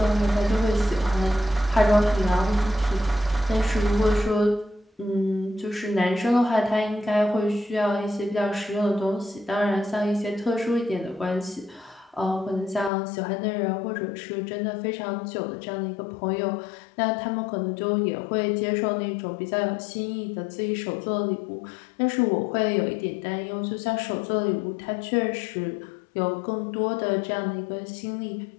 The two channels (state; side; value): drops out; right; at 12.9 s